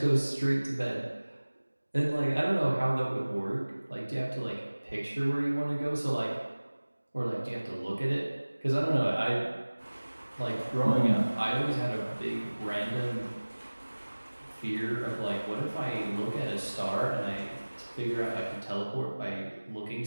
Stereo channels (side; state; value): both; inverted; correlation -1.00